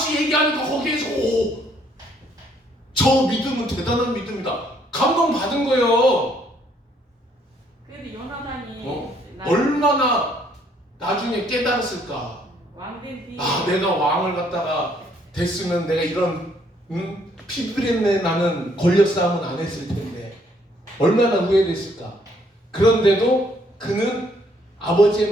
얘기하니까 거기에서 저 믿음은 대단한 믿음이다. 감동받은 거예요. 그래도 요나단이 얼마나 나중에 깨달았을까. 왕된 뒤에 내가 왕을 갖다가 됐으면 내가 이런 피부린내 나는 권력 싸움은 안 했을 텐데 얼마나 후회됐을까. 그런데도 그는 아버지의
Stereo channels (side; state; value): both; normal; correlation 0.67